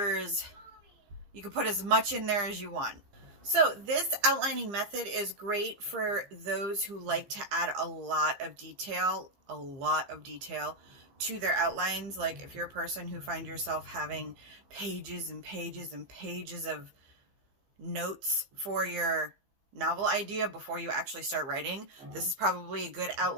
you can put as much in there as you want. So this outlining method is great for those who like to add a lot of detail to their outlines. Like if you're a person who finds yourself having pages and pages and pages of notes for your novel idea before you actually start writing, this is probably a good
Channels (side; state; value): left; late; 15 ms